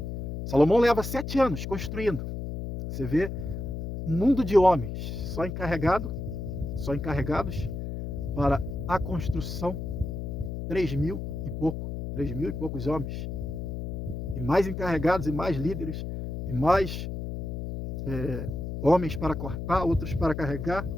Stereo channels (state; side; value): noise; left; hum, 5 dB below the sound